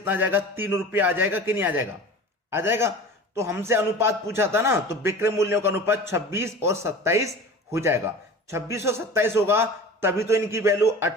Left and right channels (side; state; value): both; normal; correlation 0.37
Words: आ जाएगा? 3 रुपए आ जाएगा कि नहीं आ जाएगा? आ जाएगा। तो हमसे अनुपात पूछा था ना, तो विक्रय मूल्यों का अनुपात 26 और 27 हो जाएगा। 26 और 27 होगा तभी तो इनकी वैल्यू